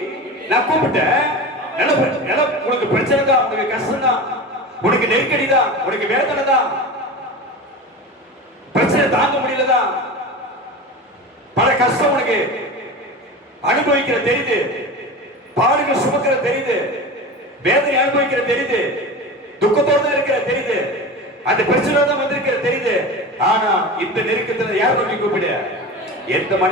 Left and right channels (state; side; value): normal; both; correlation 0.29